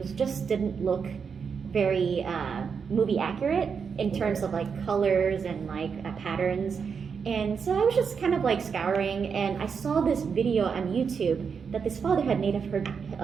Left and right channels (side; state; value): left; quieter; 6.2 dB